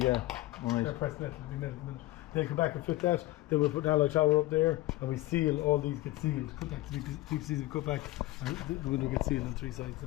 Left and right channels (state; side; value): quieter; right; 18.0 dB